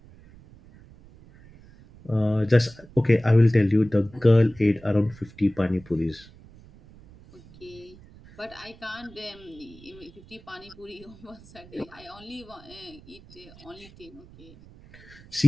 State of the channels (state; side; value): noise; right; rumble, 22 dB below the sound